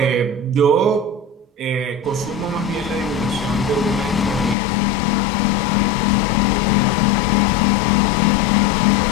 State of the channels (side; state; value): right; drops out; at 4.5 s